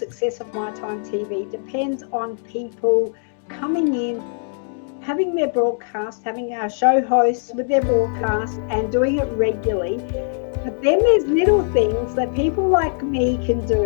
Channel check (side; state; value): right; silent; digital silence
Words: of My Time TV depends on people coming in, having their broadcast, having our show hosts with their broadcast and doing it regularly. But then there's little things that people like me can